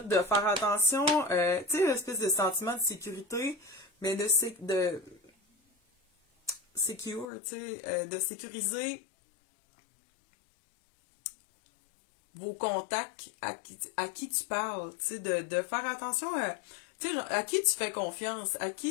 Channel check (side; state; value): right; drops out; at 7.2 s